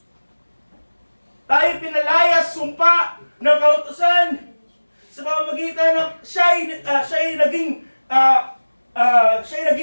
Tayo pinalayas, sumpa ng kautusan sa pamamagitan ng siya'y naging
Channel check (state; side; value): inverted; both; correlation -1.00